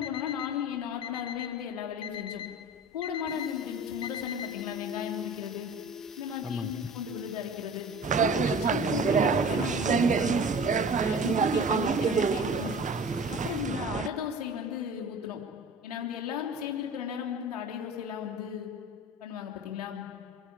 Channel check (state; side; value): normal; both; correlation 0.39